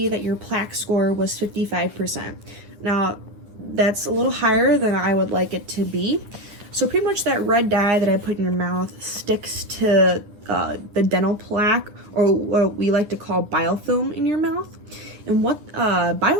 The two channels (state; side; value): late; left; 10 ms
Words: that your plaque score was 55%. Now, that's a little higher than I would like it to be. So pretty much that red dye that I put in your mouth sticks to the dental plaque, or what we like to call biofilm in your mouth. And what